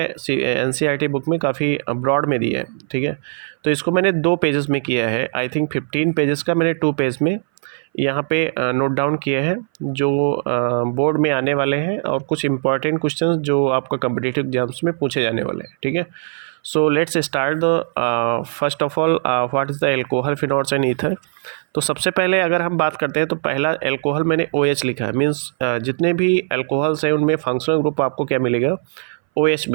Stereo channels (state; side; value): silent; left; 61 dB below the other